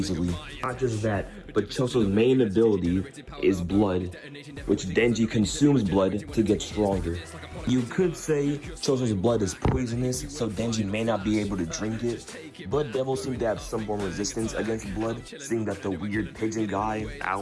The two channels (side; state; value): both; identical; correlation 1.00